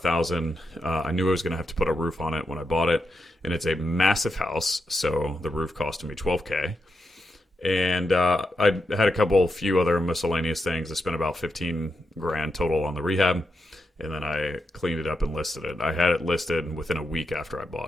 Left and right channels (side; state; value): both; normal; correlation 0.85